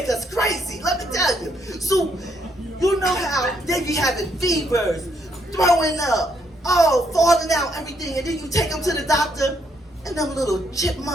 us crazy, let me tell you. So, you know how they be having fevers, throwing up, falling out, everything. And then you take them to the doctor, and them little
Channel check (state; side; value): normal; both; correlation 0.73